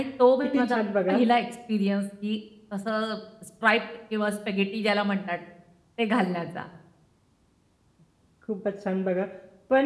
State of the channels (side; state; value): both; identical; correlation 1.00